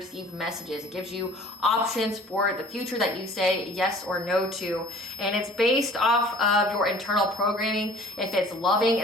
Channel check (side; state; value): both; normal; correlation 0.49